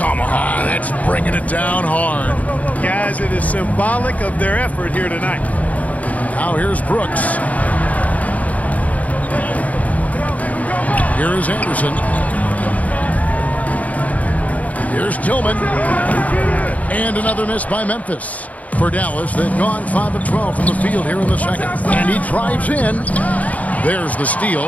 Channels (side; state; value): right; late; 0.072 ms